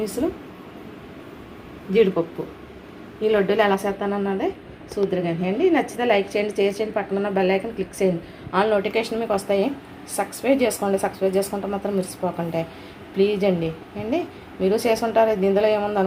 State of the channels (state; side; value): identical; both; correlation 1.00